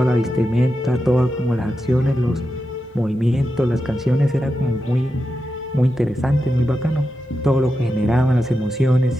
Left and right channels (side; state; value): both; normal; correlation 0.89